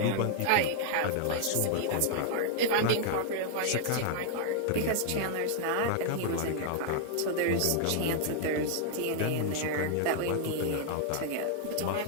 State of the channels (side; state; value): both; different; correlation 0.00